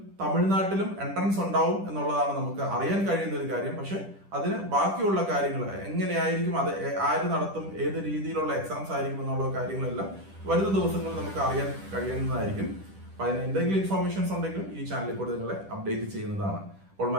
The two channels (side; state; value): left; late; 10 ms